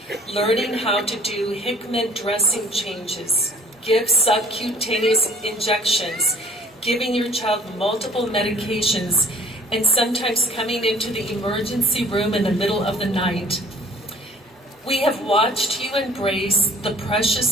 learning how to do Hickman dressing changes, give subcutaneous injections, giving your child multiple medications, and sometimes coming into the emergency room in the middle of the night. We have watched you embrace the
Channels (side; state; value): both; normal; correlation 0.54